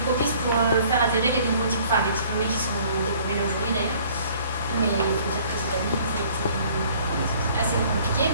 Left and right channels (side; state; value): both; inverted; correlation -0.56